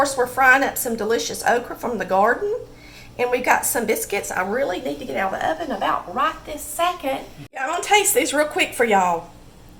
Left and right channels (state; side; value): identical; both; correlation 1.00